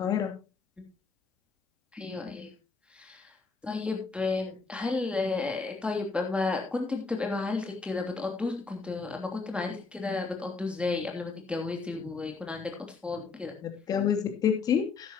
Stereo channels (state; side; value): quieter; right; 4.6 dB